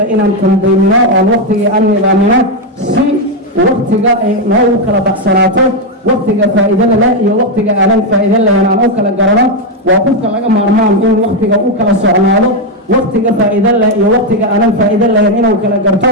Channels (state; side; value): normal; both; correlation 0.04